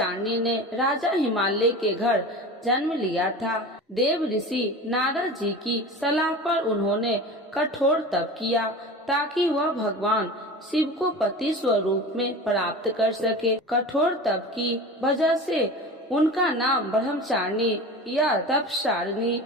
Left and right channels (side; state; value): both; normal; correlation 0.33